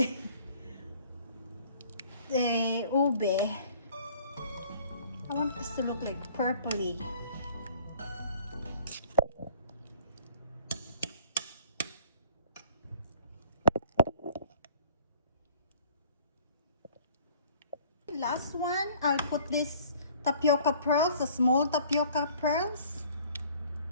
ube. I want this to look like purpley. Last one, I'll put this tapioca pearls, the small tapioca pearls.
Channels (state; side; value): inverted; both; correlation -0.53